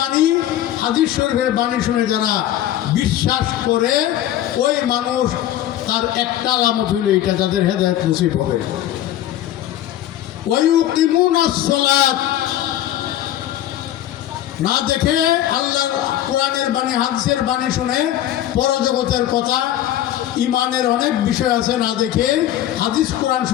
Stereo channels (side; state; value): right; quieter; 12.6 dB